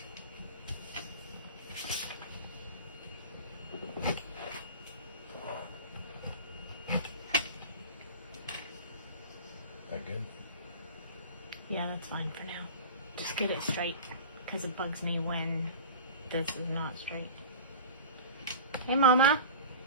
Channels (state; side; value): inverted; both; correlation -0.35